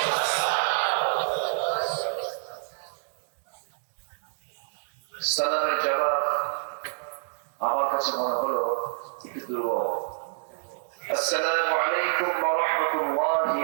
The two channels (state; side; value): silent; left; digital silence